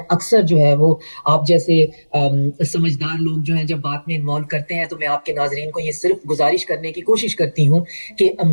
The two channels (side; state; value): both; inverted; correlation -1.00